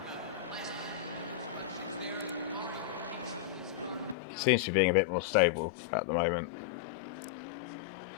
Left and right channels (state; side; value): drops out; right; at 4.2 s